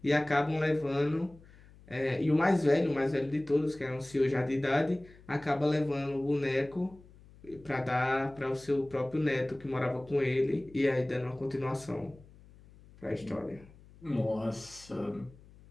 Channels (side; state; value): left; noise; hum, 23 dB below the sound